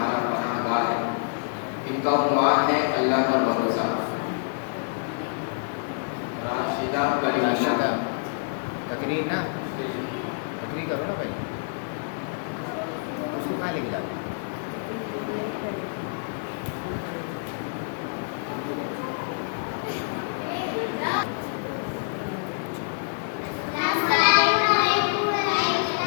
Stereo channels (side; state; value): right; silent; digital silence